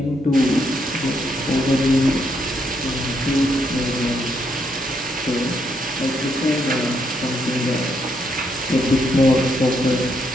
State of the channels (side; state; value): both; normal; correlation 0.76